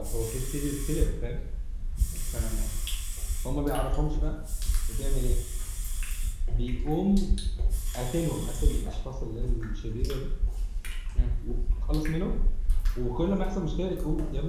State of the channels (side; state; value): both; identical; correlation 1.00